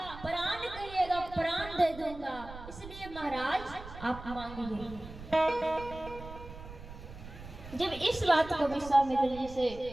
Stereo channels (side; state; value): right; noise; rumble, 14 dB below the sound